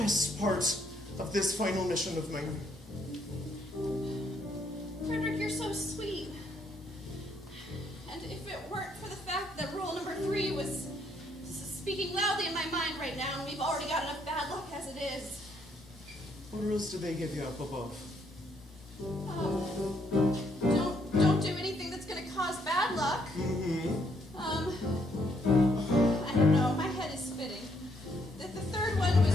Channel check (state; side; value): normal; both; correlation 0.71